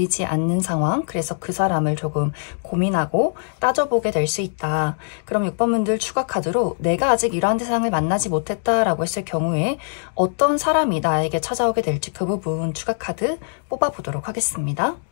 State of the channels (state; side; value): silent; right; digital silence